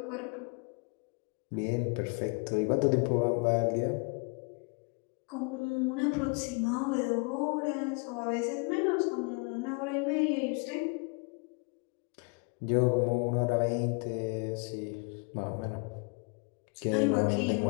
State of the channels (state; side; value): quieter; right; 34.9 dB